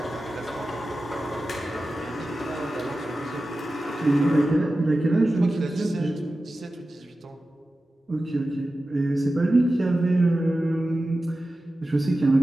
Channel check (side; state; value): both; normal; correlation 0.94